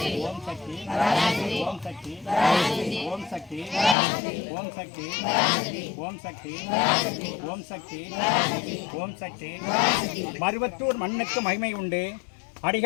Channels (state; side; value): drops out; right; at 4.0 s